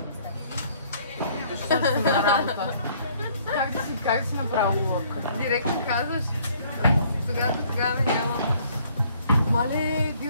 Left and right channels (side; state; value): both; inverted; correlation -0.61